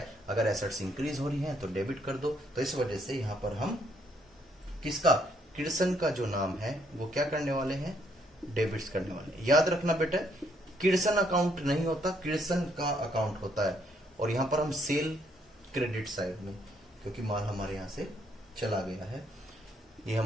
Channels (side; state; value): both; normal; correlation 0.70